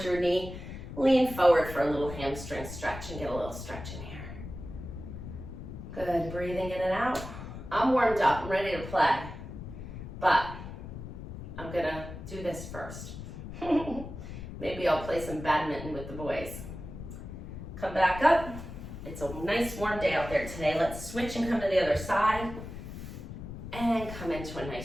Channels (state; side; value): noise; left; rumble, 10 dB below the sound